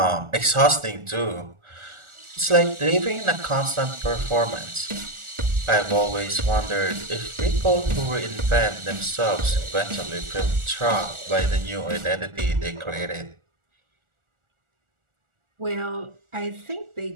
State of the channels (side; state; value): left; late; 1.4 ms